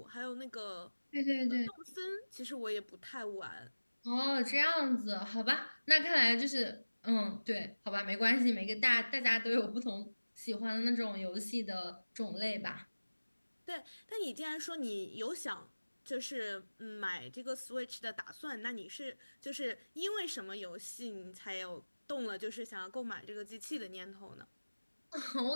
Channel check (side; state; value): both; inverted; correlation -1.00